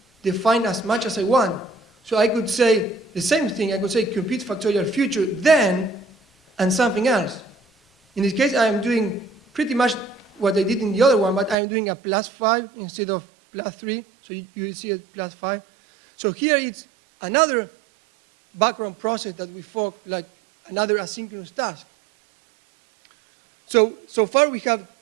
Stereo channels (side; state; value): left; drops out; at 11.6 s